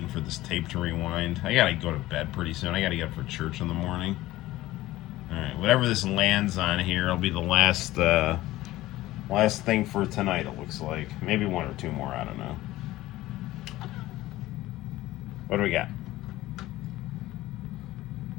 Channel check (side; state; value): right; quieter; 16.7 dB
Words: for this tape to rewind. I gotta go to bed pretty soon. I gotta get up for church in the morning. Alright, whatever this lands on here will be the last thing for tonight, it looks like. Maybe one or two more, I don't know. What do we got?